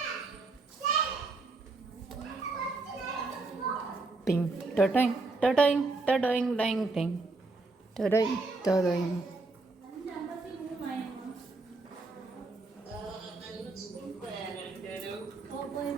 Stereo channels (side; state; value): left; quieter; 3.5 dB